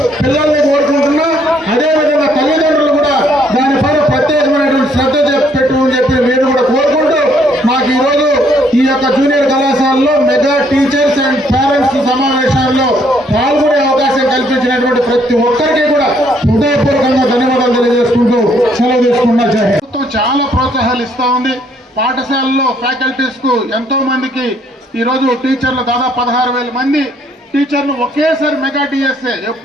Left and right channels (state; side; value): normal; both; correlation 0.67